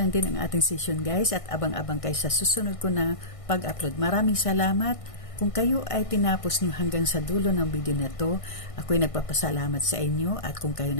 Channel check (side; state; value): right; late; 1.5 ms